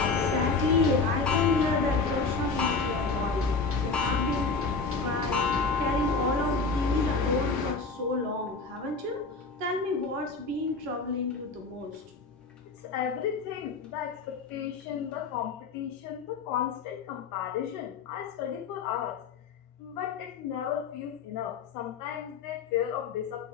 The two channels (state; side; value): quieter; right; 4.3 dB